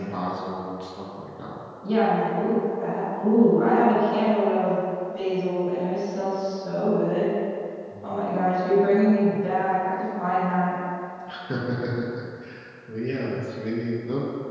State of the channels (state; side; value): identical; both; correlation 1.00